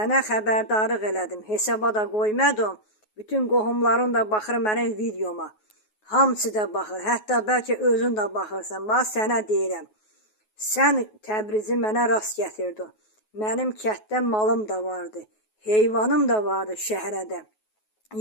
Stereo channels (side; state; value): right; late; 9.4 ms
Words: xəbərdarlıq elədim, hesaba da qoymadım. Bütün qohumların da baxır mənim videoma. Hamısı da baxır, hətta bəlkə özün də baxırsan. Bax, sənə deyirəm, sən Təbrizi mənə rast gətirdin. Mənim kətdə malım da vardı, heyvanım da vardı şəhərədə.